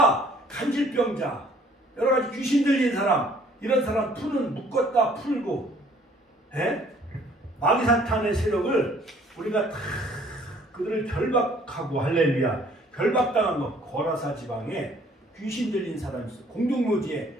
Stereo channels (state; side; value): normal; both; correlation 0.58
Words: 간질병자, 여러 가지 귀신 들린 사람, 이런 사람 묶었다 풀고, 마귀사탄의 세력을 우리가 다 그들을 결박하고, 할렐루야, 결박당한 거. 거라사 지방에 귀신 들린 사람이 있어. 공동묘지에